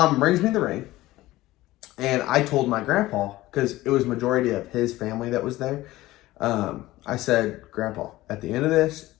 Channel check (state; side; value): quieter; right; 17.4 dB